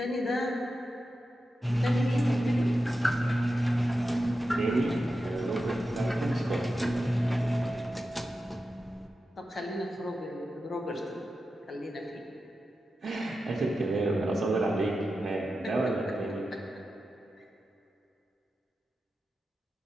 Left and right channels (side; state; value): both; normal; correlation 0.91